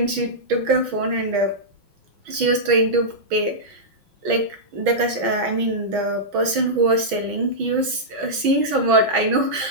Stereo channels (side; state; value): left; late; 6.2 ms